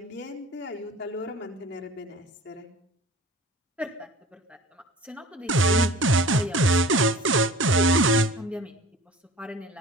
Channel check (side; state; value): both; normal; correlation 0.43